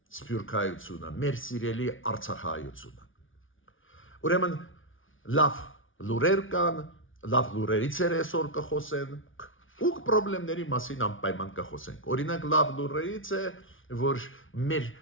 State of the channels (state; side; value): late; right; 0.57 ms